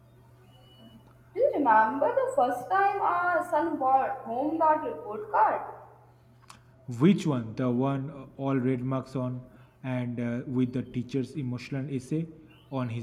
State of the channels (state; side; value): identical; both; correlation 1.00